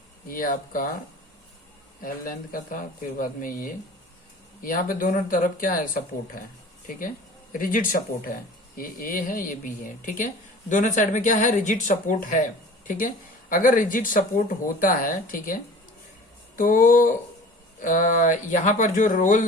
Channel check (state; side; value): normal; both; correlation 0.43